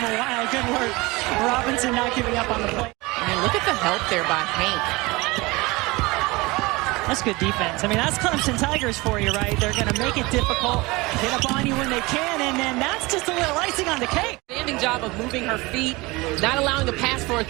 while. Good work. Robinson not giving up on the play. I mean, look at the help there by Hank. That's good defense. I mean, that's Clemson Tigers for you, right? They're going to make it difficult, get up on you when they can, and then that's just a little icing on the cake. Standing job of moving her feet, not allowing a pass for a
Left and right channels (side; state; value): left; quieter; 23.1 dB